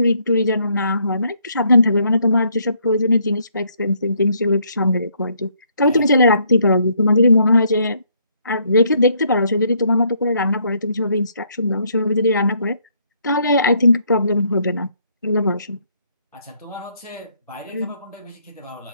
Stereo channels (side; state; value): both; inverted; correlation -0.69